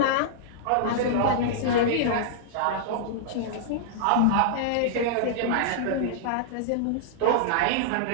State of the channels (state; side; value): different; both; correlation -0.02